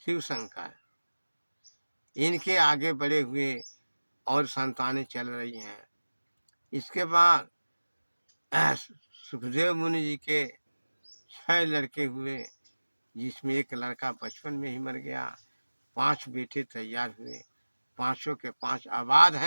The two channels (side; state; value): both; inverted; correlation -1.00